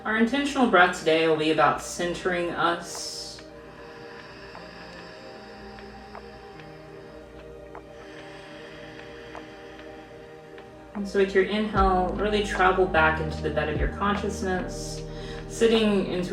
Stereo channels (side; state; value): both; identical; correlation 1.00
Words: our intentional breath today will be about centering us. And so with your inhale, really travel back into the bed of your consciousness, sitting